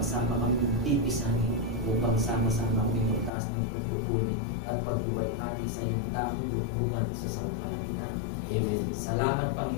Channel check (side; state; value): right; drops out; at 3.3 s